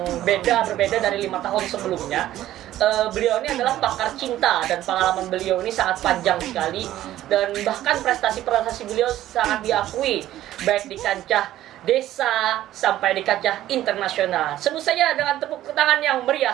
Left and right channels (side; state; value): left; quieter; 13.6 dB